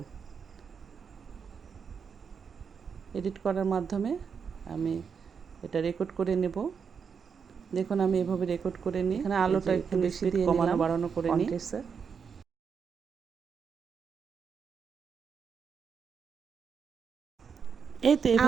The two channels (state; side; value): quieter; left; 6.3 dB